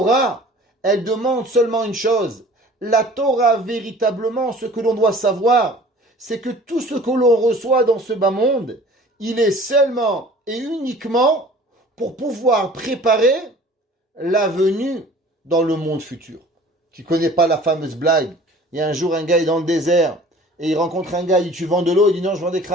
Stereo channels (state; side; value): normal; both; correlation 0.47